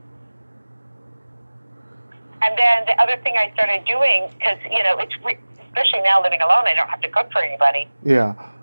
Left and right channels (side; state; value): both; inverted; correlation -1.00